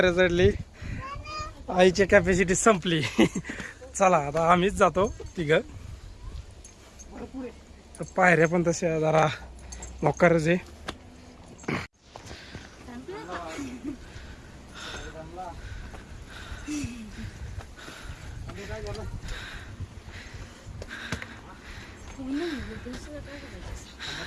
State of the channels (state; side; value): identical; both; correlation 1.00